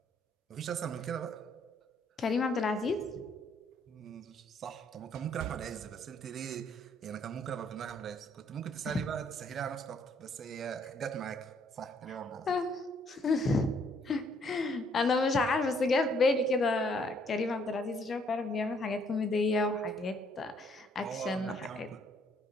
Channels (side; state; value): both; normal; correlation 0.66